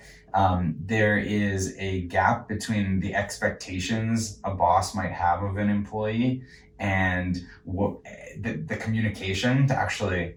There is a gap between the expectations a boss might have of an employee and what the communication to actually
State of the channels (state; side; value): identical; both; correlation 1.00